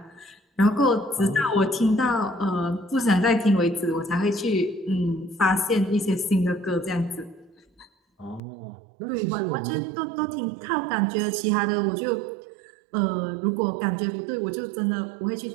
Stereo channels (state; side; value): drops out; left; at 8.4 s